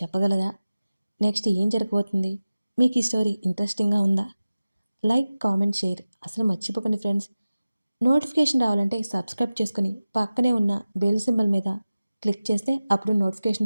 నెక్స్ట్ ఏం జరగబోతుంది? మీకు ఈ స్టోరీ ఇంట్రెస్టింగ్గా ఉందా? లైక్, కామెంట్, షేర్ అసలు మర్చిపోకండి ఫ్రెండ్స్. నోటిఫికేషన్ రావాలంటే సబ్స్క్రైబ్ చేసుకుని పక్కనే ఉన్న బెల్ సింబల్ మీద క్లిక్ చేస్తే అప్పుడు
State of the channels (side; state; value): both; inverted; correlation -0.97